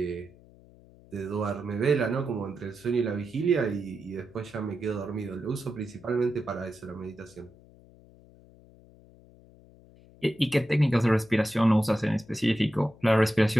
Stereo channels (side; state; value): left; noise; hum, 25 dB below the sound